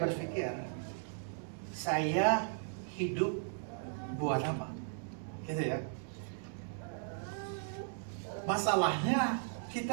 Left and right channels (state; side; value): silent; left; digital silence